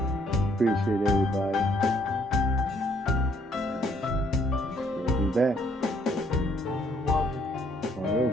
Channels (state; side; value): normal; both; correlation 0.66